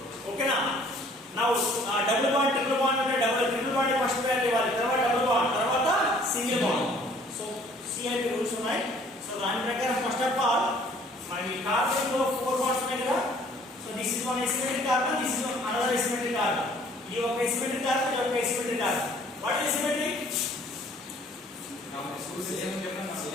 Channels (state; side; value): normal; both; correlation 0.57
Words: Okay na? Now double bond, triple bond అంటే triple bond first priority ఇవ్వాలి. తర్వాత double bond, తర్వాత single bond. So CIP rules ఉన్నాయి. So దాని ప్రకారం first of all మరి carbon లో 4 bonds ఉన్నాయి కదా. So this is one asymmetric carbon, this is another asymmetric carbon. ఇది ఒక asymmetric carbon, ఇది ఒక asymmetric carbon. What is asymmetric?